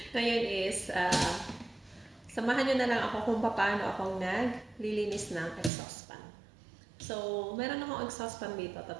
ngayon is, samahan nyo na lang ako kung paano ako naglilinis ng exhaust fan. So, meron akong exhaust fan dito,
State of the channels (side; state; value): left; drops out; at 5.7 s